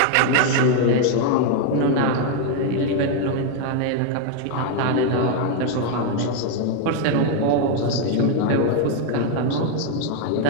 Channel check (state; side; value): different; both; correlation 0.00